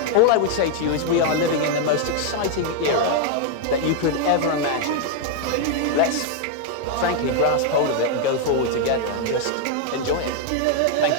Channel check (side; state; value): both; different; correlation 0.00